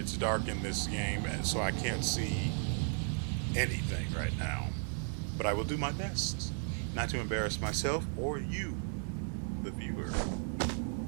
dark in this game, so I can't see anything right now. But I will do my best not to embarrass myself or you, the viewer.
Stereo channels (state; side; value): silent; left; 54 dB below the other